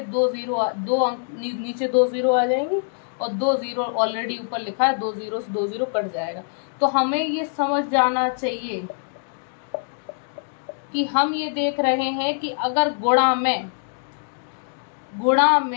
2 जीरो आ जाएंगे, और 2 जीरो ऑलरेडी ऊपर लिखा है, 2 जीरो से 2 जीरो कट जाएगा। तो हमें ये समझ जाना चाहिए कि हम ये देख रहे हैं कि अगर गुणा में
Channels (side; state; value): right; silent; digital silence